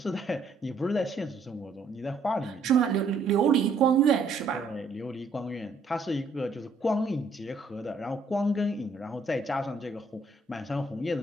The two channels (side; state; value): left; quieter; 3.5 dB